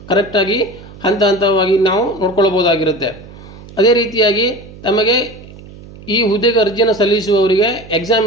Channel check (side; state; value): right; noise; hum, 18 dB below the sound